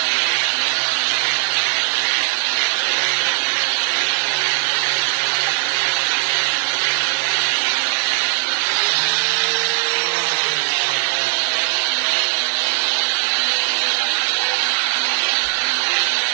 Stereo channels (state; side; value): silent; left; 65 dB below the other